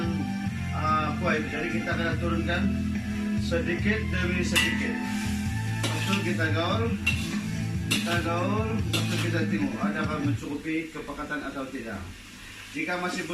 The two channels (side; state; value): both; identical; correlation 1.00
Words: kuah itu. Jadi kita akan turunkan sedikit demi sedikit. Lalu kita gaul, lalu kita tengok adakah mencukupi kepekatan atau tidak. Jika masih